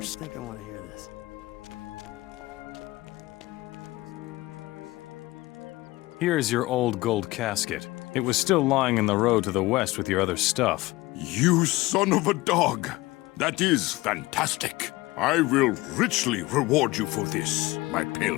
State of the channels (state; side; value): quieter; right; 20.1 dB